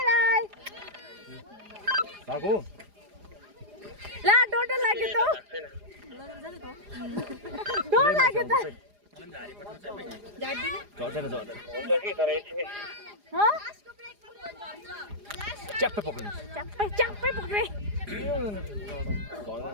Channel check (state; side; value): late; left; 4.9 ms